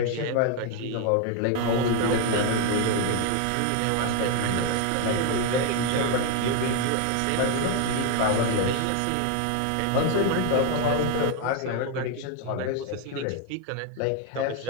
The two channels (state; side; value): different; both; correlation 0.01